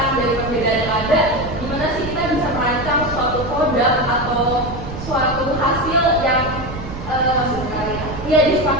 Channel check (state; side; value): noise; right; rumble, 10 dB below the sound